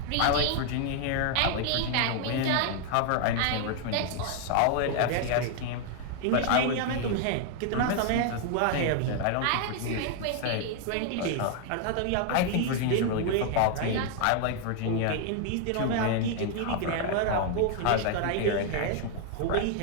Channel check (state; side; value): different; both; correlation 0.00